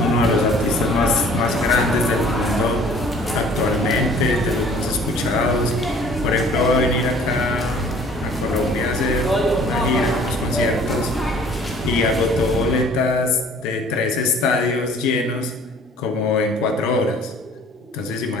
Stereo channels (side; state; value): both; normal; correlation 0.52